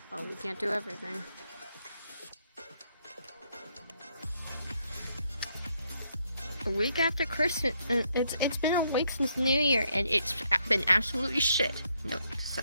Oh, we can't do everything. A week after Christmas, it's been a week since New Year, and it's been absolutely shit. No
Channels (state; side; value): inverted; both; correlation -0.74